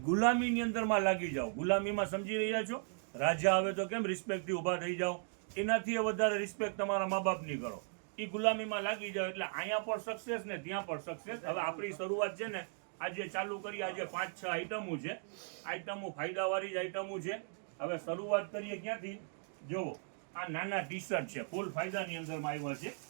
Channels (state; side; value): silent; left; 53 dB below the other